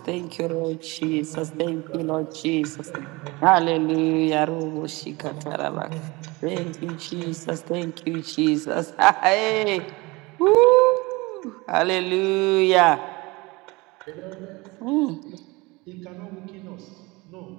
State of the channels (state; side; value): quieter; left; 23.9 dB